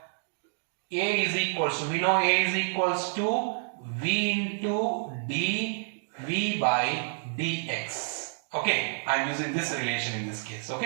a is equals to, we know a is equals to v into dv by dx. Okay, I am using this relation in this case.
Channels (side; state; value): left; silent; 59 dB below the other